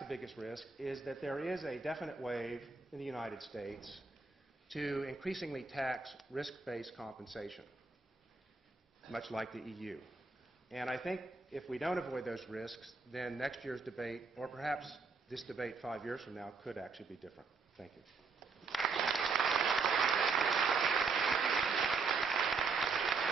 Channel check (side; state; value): left; quieter; 4.4 dB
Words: biggest risk, is that there is a definite wave in the United States to increasingly tax risk-based compensation, much like the EU. And I think if we don't avoid those risks, then next year's debate, or perhaps this debate 5 years from now, could actually be different. Thank you.